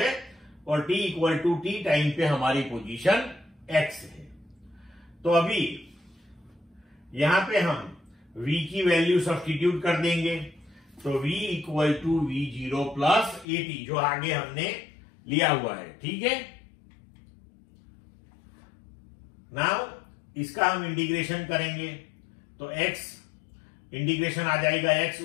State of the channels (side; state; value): right; drops out; at 13.5 s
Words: और t equal to t time पे हमारी पोजीशन x है। तो अभी यहां पे हम v की वैल्यू सब्स्टिट्यूट कर देंगे, तो v equal to v0 plus at जो आगे हमने लिया हुआ है, ठीक है। नाउ इसका हम इंटीग्रेशन करेंगे तो x इंटीग्रेशन आ जाएगा x,